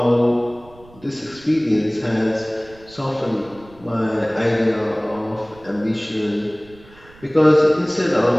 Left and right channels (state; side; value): noise; right; rumble, 24 dB below the sound